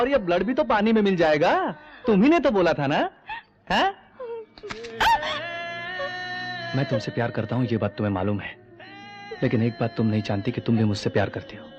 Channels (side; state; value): both; identical; correlation 1.00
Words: ये ब्लड भी तो पानी में मिल जाएगा। तुम ही ने तो बोला था ना, है? मैं तुमसे प्यार करता हूं, ये बात तुम्हें मालूम है। लेकिन एक बात तुम नहीं जानती कि तुम भी मुझसे प्यार करती हो।